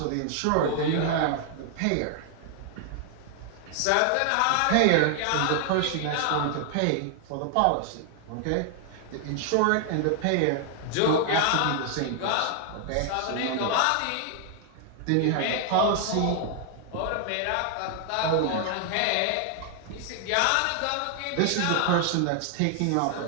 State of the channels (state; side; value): different; both; correlation 0.00